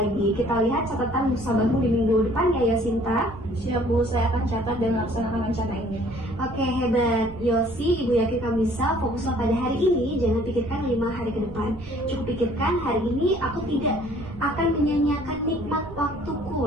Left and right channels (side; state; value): right; noise; rumble, 16 dB below the sound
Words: lagi. Kita lihat catatan musabahmu di minggu depan ya Yosinta. Siap Bu, saya akan catat dan laksanakan rencana ini. Oke, hebat Yosi, ibu yakin kamu bisa. Fokuslah pada hari ini, jangan pikirkan 5 hari ke depan. Cukup pikirkan hari ini aku tidak akan menyanyiakan nikmat waktuku